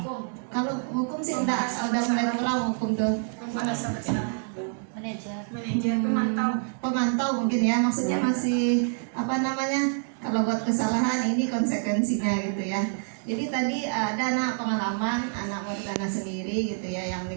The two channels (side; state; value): left; silent; 60 dB below the other